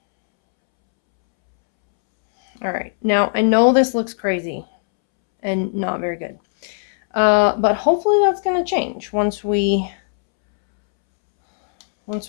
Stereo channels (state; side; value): silent; right; 67 dB below the other